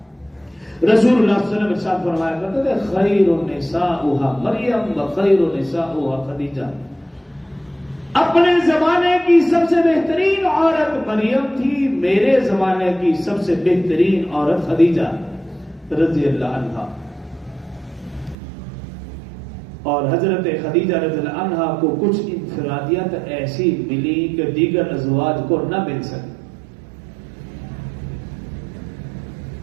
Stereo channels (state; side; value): drops out; left; at 18.4 s